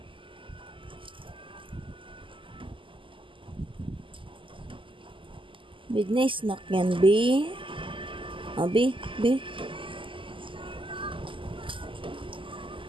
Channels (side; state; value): left; late; 0.25 ms